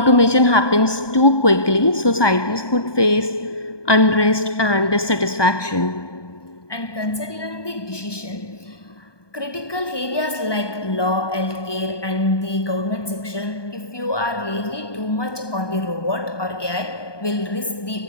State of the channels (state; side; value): late; right; 1.2 ms